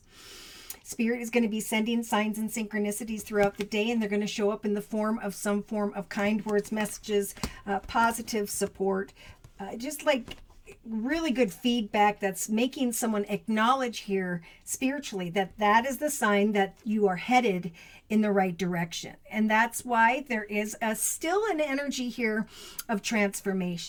Spirit is going to be sending signs and synchronicities throughout the day, and they're going to show up in the form of some form of kind words, messages, positive support, just like really good feedback that's making someone acknowledge here spiritually that that is the sign that you are headed in the right direction. And that's why there is still an energy here of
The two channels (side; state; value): both; identical; correlation 1.00